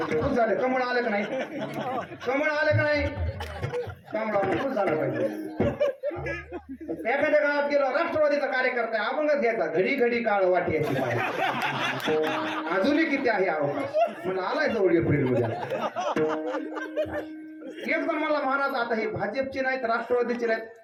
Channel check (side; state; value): both; identical; correlation 1.00